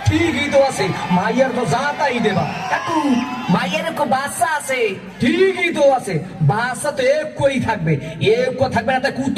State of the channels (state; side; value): identical; both; correlation 1.00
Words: ঠিকই তো আছে মাইয়ার তো জাতাই দেবা কাকু মাইয়ারে কো বাচ্চা আছে ঠিকই তো আছে বাচ্চা তো এক কই থাকবে এক কো থাকবে না তাই